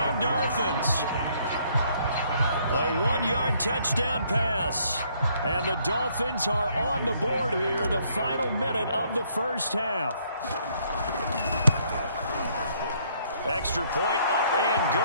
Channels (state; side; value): inverted; both; correlation -0.67